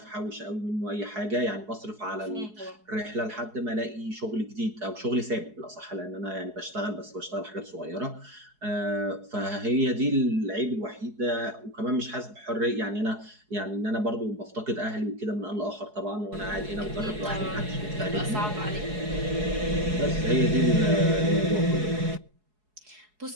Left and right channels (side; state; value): left; late; 4.7 ms